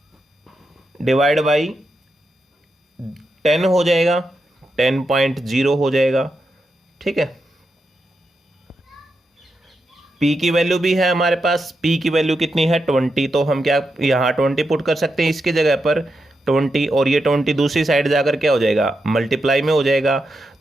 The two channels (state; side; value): normal; both; correlation 0.86